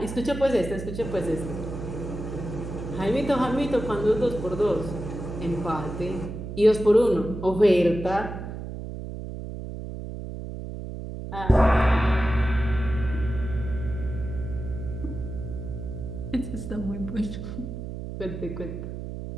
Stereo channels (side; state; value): right; noise; hum, 8 dB below the sound